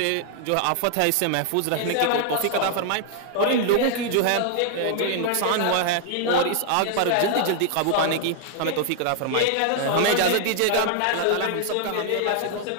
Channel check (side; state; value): both; different; correlation 0.00